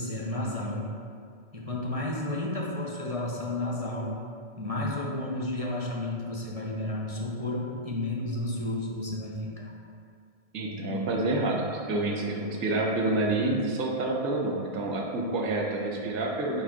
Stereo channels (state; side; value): late; left; 1.7 ms